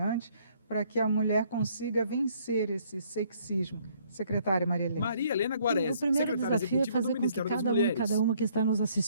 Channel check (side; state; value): both; inverted; correlation -0.64